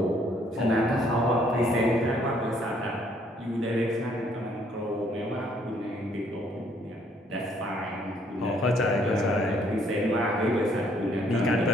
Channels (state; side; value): normal; both; correlation 0.65